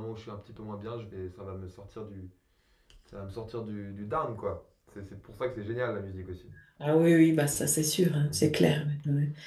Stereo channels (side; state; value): both; identical; correlation 1.00